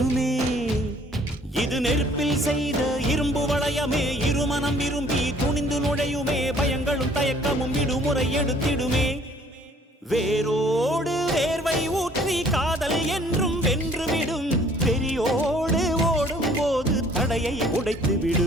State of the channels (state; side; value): normal; both; correlation 0.57